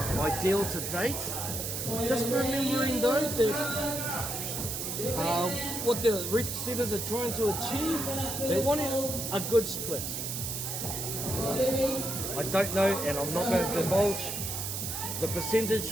ideal to date. Just remembering though that what the reach setters are trying to achieve, they want a good split. I don't know, and I'm not going to divulge the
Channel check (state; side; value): noise; right; hiss, 4 dB below the sound